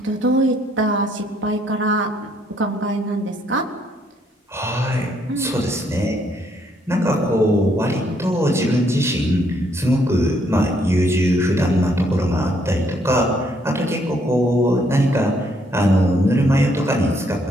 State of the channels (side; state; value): both; normal; correlation 0.70